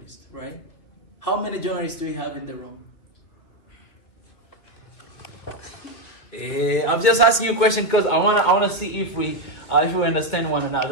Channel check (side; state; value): right; late; 2.9 ms